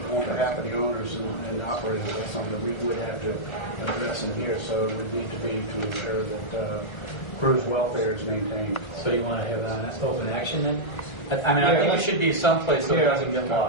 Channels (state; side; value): late; right; 1.3 ms